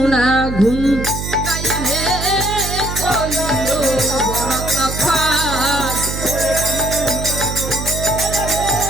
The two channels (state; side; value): noise; right; hum, 5 dB below the sound